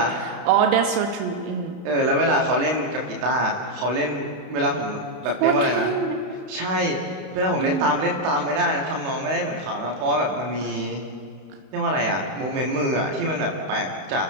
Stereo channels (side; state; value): left; late; 32 ms